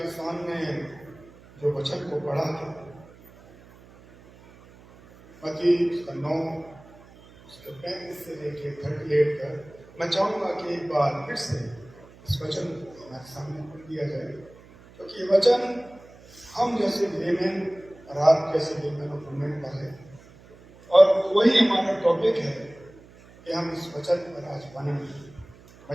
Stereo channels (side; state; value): right; noise; hum, 23 dB below the sound